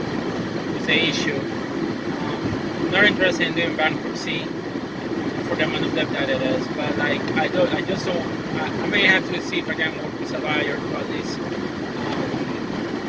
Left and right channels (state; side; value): identical; both; correlation 1.00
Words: the issue. I'm not interested in doing bankruptcy for the amount of debt that it is, but like I just don't. I may have to see if I can work with a lawyer to at least